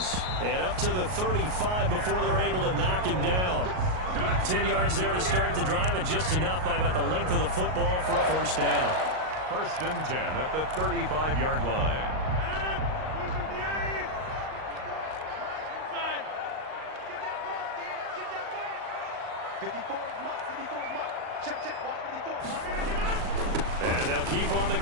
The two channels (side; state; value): left; late; 38 ms